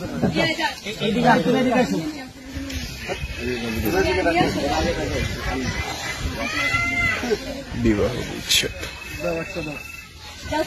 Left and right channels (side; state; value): both; identical; correlation 1.00